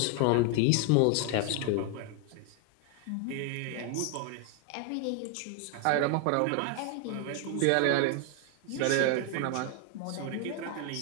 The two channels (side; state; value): both; different; correlation 0.00